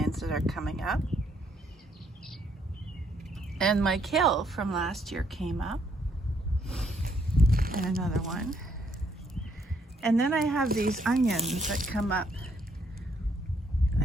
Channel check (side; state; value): both; normal; correlation 0.71